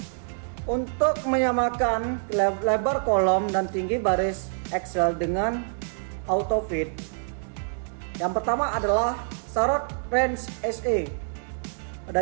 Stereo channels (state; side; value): silent; left; digital silence